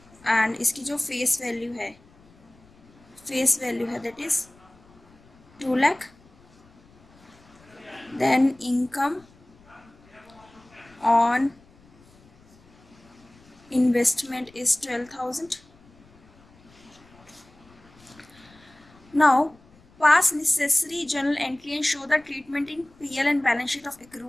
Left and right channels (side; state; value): left; noise; rumble, 28 dB below the sound